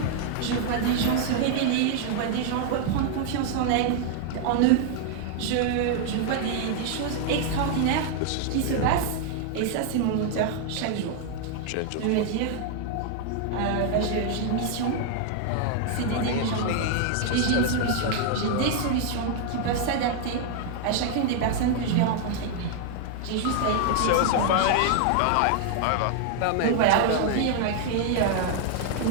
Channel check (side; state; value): both; different; correlation 0.00